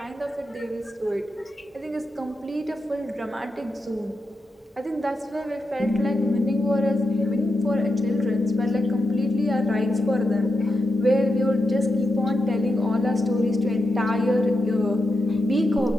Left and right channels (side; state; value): both; normal; correlation 0.86